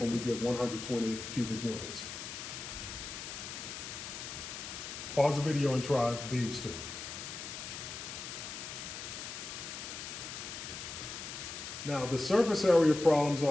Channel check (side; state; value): left; noise; hiss, 8 dB below the sound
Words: and we get 120 cubic units. Pause the video and try these 2. Now, the surface area problems